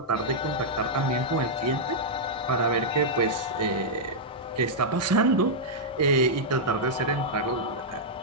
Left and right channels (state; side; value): normal; both; correlation -0.08